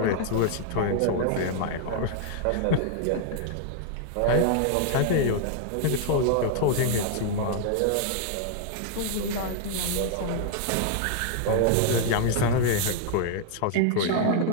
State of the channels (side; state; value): both; different; correlation 0.00